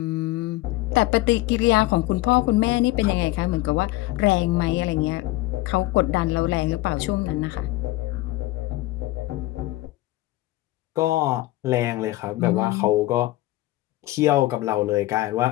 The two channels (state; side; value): quieter; right; 17.9 dB